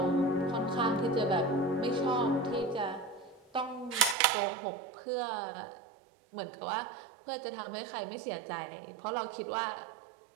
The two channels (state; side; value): drops out; left; at 4.2 s